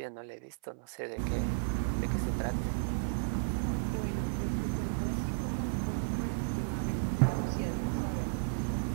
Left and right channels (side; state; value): left; silent; 55 dB below the other